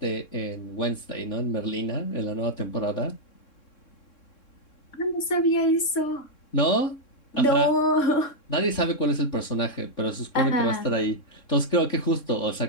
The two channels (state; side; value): late; right; 3.6 ms